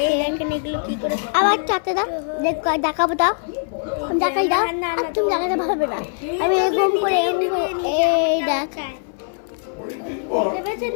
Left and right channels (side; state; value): right; silent; 60 dB below the other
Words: এগুলো কি করে। আবার চাতে দাও, দেখাবো দাও, দেখাই দাও। তুমি দেখাতে পারবে না, আমি এরকম করে এই দেখ, দেখেছেন